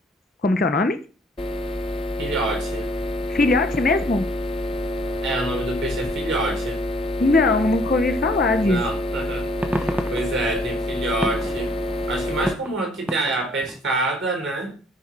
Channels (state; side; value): normal; both; correlation 0.61